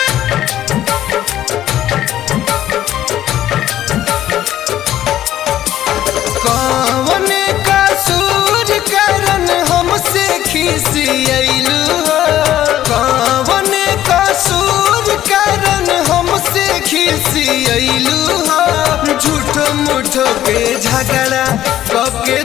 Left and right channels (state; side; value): quieter; right; 12.5 dB